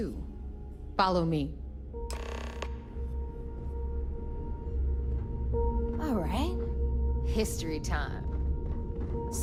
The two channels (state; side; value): identical; both; correlation 1.00